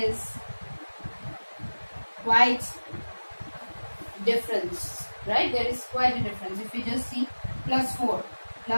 quite difference, right? There is quite a difference. If you just see plus 4,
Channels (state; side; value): inverted; both; correlation -1.00